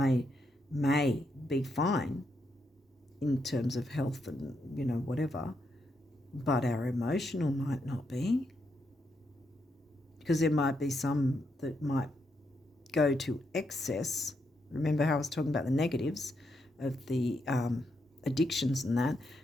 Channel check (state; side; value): normal; both; correlation 0.80